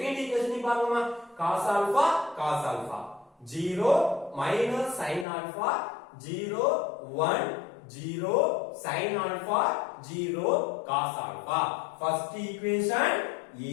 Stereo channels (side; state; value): right; drops out; at 5.2 s